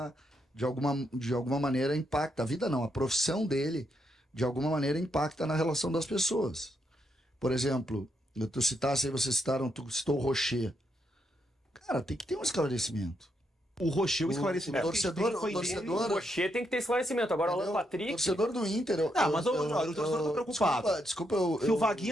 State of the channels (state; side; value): normal; both; correlation 0.79